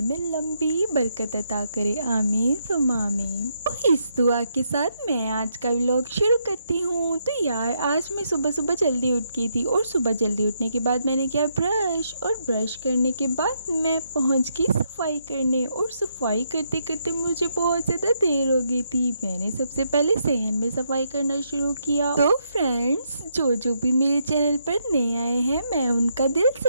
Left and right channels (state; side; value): inverted; both; correlation -0.78